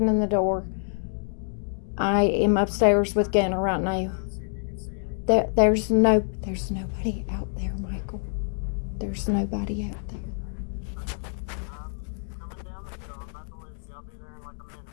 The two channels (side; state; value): right; silent; 60 dB below the other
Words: the door. I am upstairs with Gunner right now. There's nobody out there, Michael. There's nobody out there.